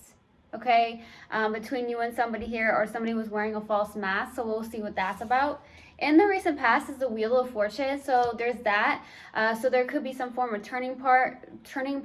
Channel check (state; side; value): identical; both; correlation 1.00